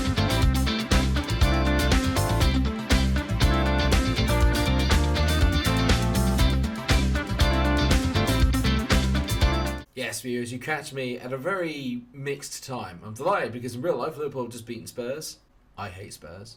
Yes, viewers, you catch me at a very mixed time. I'm delighted because in real life Liverpool have just beaten Spurs. I hate Spurs.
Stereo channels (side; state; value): both; identical; correlation 1.00